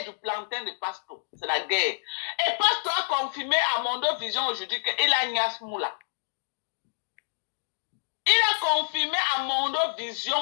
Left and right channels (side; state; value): right; silent; digital silence